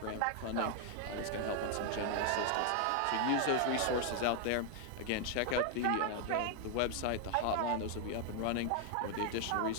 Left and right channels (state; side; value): different; both; correlation 0.00